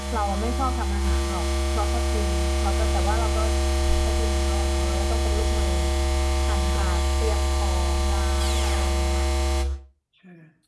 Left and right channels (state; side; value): identical; both; correlation 1.00